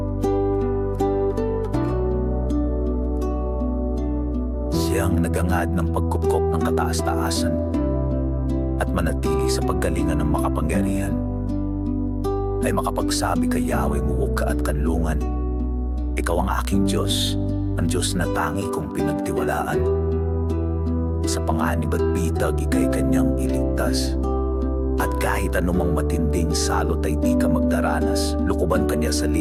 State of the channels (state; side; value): identical; both; correlation 1.00